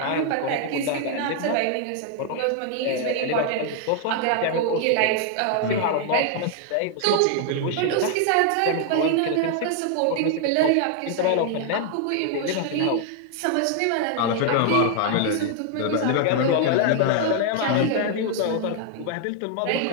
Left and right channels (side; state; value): both; different; correlation 0.00